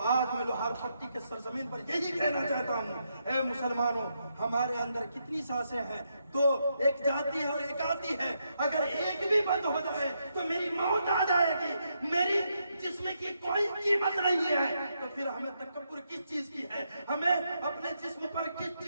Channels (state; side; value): inverted; both; correlation -0.80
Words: आज मैं लोहार पट्टी के सरजमीन पर यही कहना चाहता हूँ, ऐ मुसलमानों, हमारे अंदर कितनी सांसें हैं? 2, एक जाती है और एक आती है। अगर एक भी बंद हो जाए तो मेरी मौत आ जाएगी, मेरी जिस्म की कोई कीमत नहीं है। तो फिर हमें तकब्बुर किस चीज की है? हमें अपने जिस्म पर किस